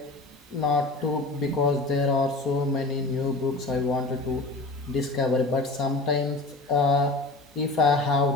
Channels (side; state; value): right; quieter; 3.0 dB